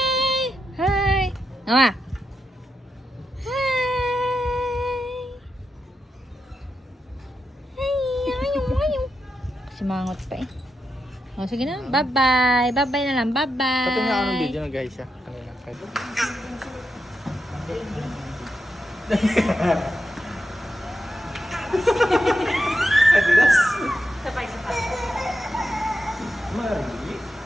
Hi! Nawa! Hi! Hi! Simangot pa eh. O, sige na. Bye-bye. Bye-bye na lang. Bye-bye. Pati nga anong video na guys siya. Kanina. Adidas. Sabay-sabay. Mari.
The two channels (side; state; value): both; normal; correlation 0.86